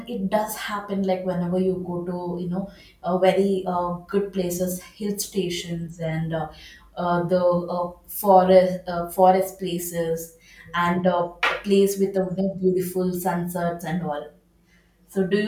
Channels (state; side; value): identical; both; correlation 1.00